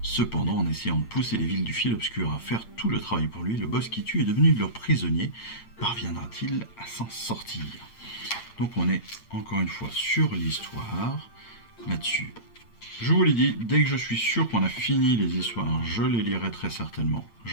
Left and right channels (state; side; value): late; right; 8.7 ms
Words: Cependant, en essayant de pousser les villes du fil obscur à faire tout le travail pour lui, le boss qui tue est devenu leur prisonnier. Parviendra-t-il à s'en sortir? Donc on est encore une fois sur l'histoire là-dessus. Je vous l'ai dit, dès que je suis sûr qu'on a fini les histoires, je les lirai très certainement.